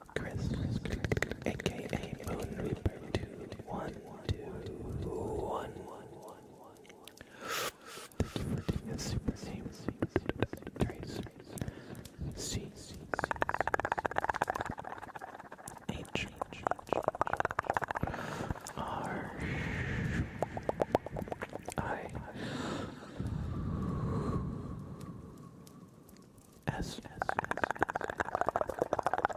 Chris, aka Moon Reaper 2121. Thank you for doing a super name trace. C H R I S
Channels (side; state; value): both; identical; correlation 1.00